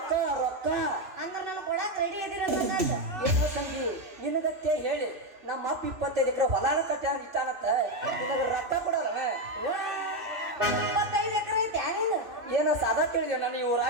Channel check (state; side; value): late; left; 2.9 ms